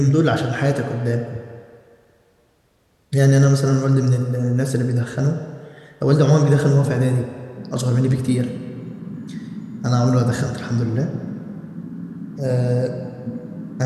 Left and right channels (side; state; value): both; identical; correlation 1.00